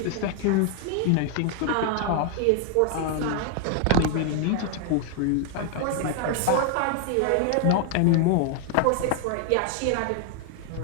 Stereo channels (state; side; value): different; both; correlation 0.00